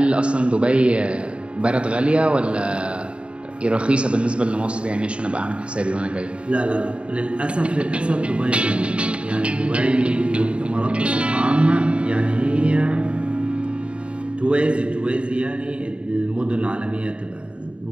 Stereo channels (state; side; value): late; left; 0.058 ms